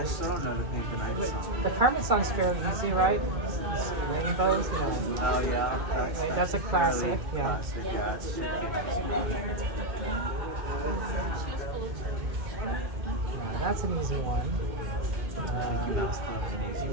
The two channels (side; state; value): left; late; 2.2 ms